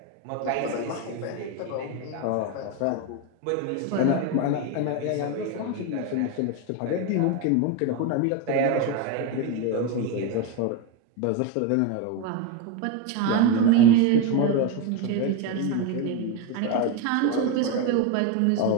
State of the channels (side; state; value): both; different; correlation 0.03